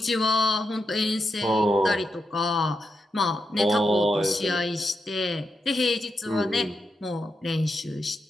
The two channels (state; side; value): normal; both; correlation 0.85